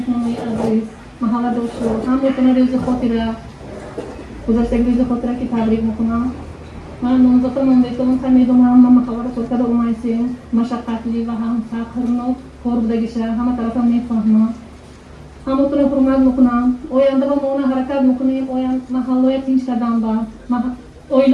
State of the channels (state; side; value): identical; both; correlation 1.00